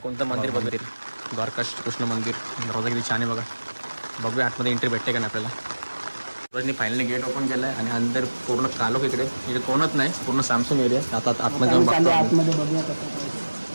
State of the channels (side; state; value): both; inverted; correlation -1.00